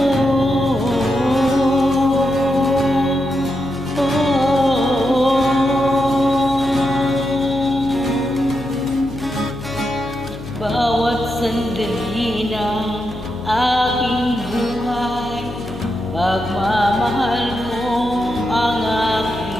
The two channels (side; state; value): left; noise; hum, 14 dB below the sound